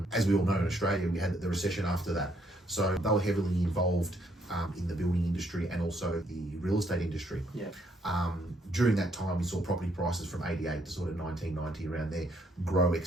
as we all know in Australia, we had the recession after that. So they were heavily involved in the building industry and also the real estate industry. Yeah. During that time, we saw property prices from 88 to sort of 1990 around there grow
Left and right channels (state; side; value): normal; both; correlation 0.71